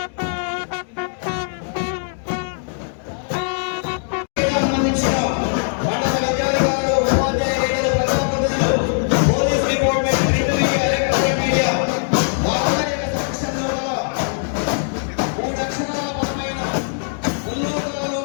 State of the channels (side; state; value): right; silent; digital silence